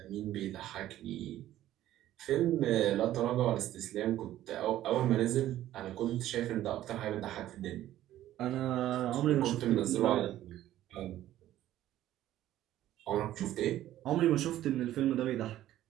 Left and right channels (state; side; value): quieter; left; 13.4 dB